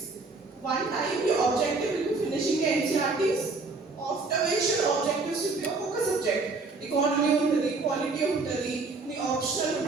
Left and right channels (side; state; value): left; quieter; 3.8 dB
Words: One time your objective will be finishing your NCERTs. After which your objectives will be a focus subject. Economy untadi, quality untadi, the optional